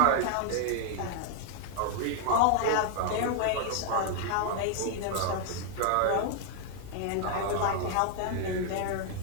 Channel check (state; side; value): different; both; correlation 0.00